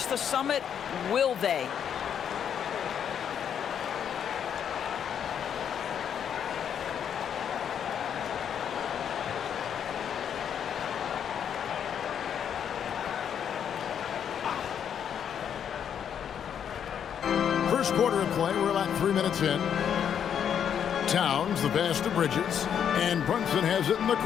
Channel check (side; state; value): right; quieter; 8.5 dB